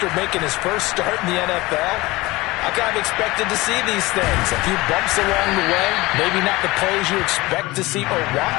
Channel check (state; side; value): quieter; right; 20.8 dB